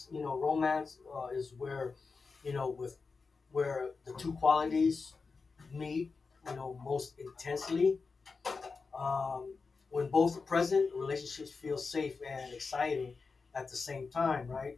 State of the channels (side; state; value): right; quieter; 4.6 dB